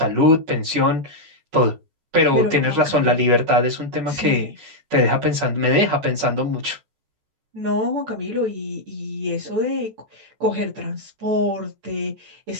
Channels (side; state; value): left; late; 14 ms